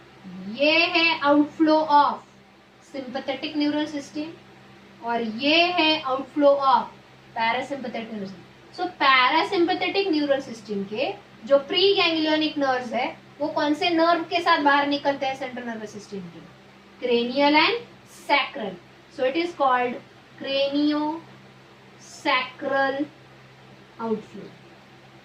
ये है outflow of sympathetic neural system और ये है outflow of parasympathetic neural system. So parasympathetic neural system के जो प्री गैंग्लियोनिक नर्व्स है वो कौन से नर्व के साथ बाहर निकलते हैं सेंट्रल नर्वस सिस्टम के? Cranial and sacral. So it is called cranio sacral outflow.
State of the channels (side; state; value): both; identical; correlation 1.00